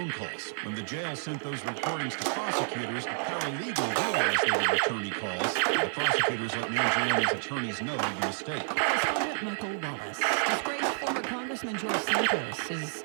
calls. When the jail sent those recordings to prosecutors, a paralegal realized they were attorney calls. The prosecutors let Mangione's attorneys know of the mistake. Correspondent Michael Wallace. Disgraced former Congressman George Santos is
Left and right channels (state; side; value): silent; left; 58 dB below the other